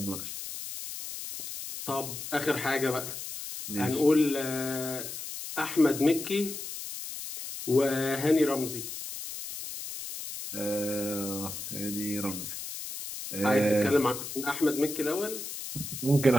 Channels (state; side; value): noise; left; hiss, 8 dB below the sound